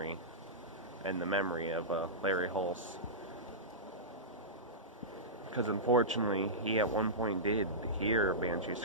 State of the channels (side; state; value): both; normal; correlation -0.17